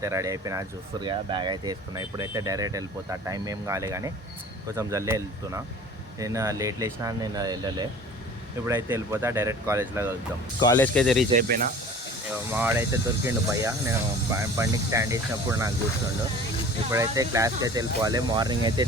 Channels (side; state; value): both; normal; correlation 0.43